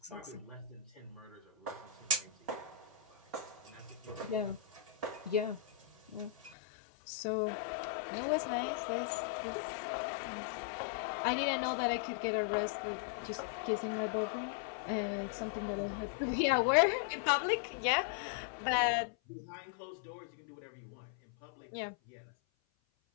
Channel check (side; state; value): right; drops out; at 6.6 s